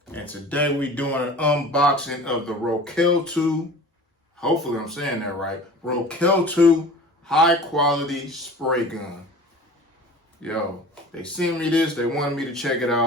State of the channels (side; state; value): both; normal; correlation 0.40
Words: And today we doing an unboxing of the Rokeltu, hopefully I'm saying that right, Rokeltu high quality spray gun. Yo, they sent me this, they wanted me to check it